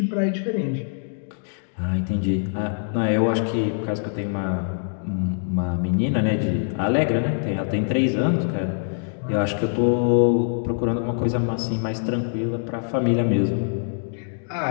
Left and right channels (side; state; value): right; silent; digital silence